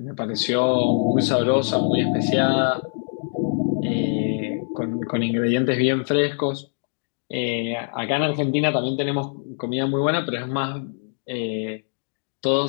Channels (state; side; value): silent; right; digital silence